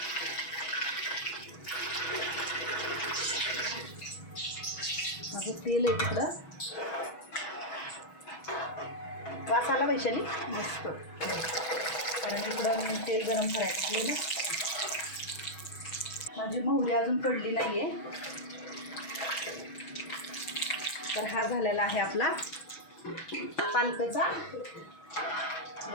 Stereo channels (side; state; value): right; late; 6.2 ms